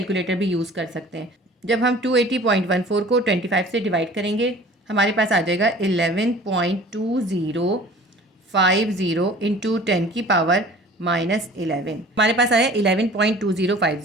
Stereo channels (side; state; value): both; normal; correlation 0.46